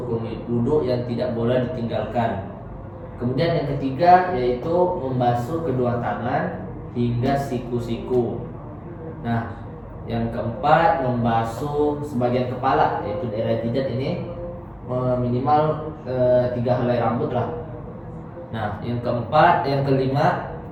wudu yang tidak boleh ditinggalkan. Kemudian yang ketiga yaitu membasuh kedua tangan hingga siku-siku. Nah, yang keempat membasuh sebagian kepala yaitu daerah jidat ini minimal 3 helai rambut lah. Nah, yang kelima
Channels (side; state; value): both; identical; correlation 1.00